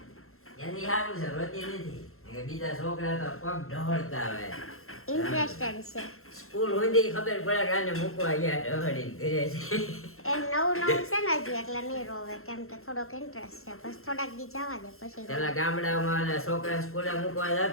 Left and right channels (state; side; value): late; right; 0.62 ms